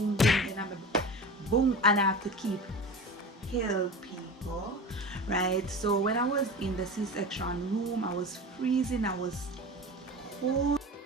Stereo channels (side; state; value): both; normal; correlation 0.31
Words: boom, and I'm boom, and I have to keep heal people, right? So when I was in the C-section room, I was freezing, I was cold,